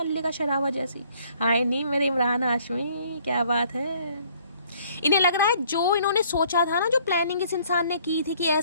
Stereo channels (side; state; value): both; inverted; correlation -0.61